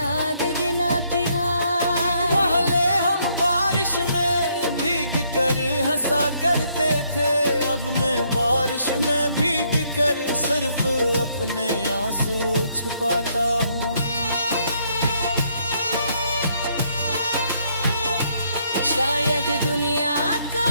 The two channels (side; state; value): both; inverted; correlation -0.71